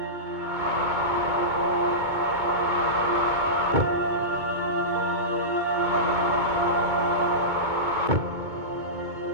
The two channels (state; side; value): late; left; 2.2 ms